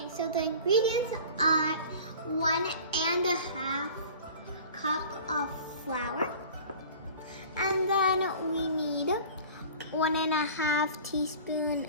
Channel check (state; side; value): inverted; both; correlation -0.42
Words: so the ingredients are 1.5 cup of flour. And then we need 1.5 teaspoon